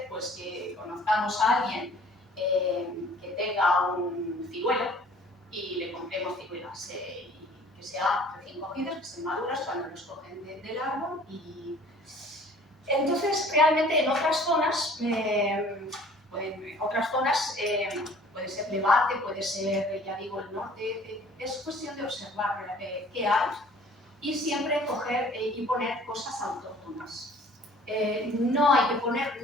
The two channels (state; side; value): normal; both; correlation 0.52